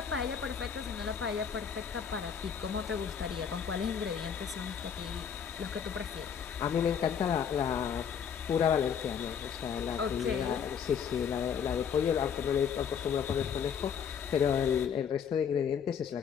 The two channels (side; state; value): right; quieter; 7.5 dB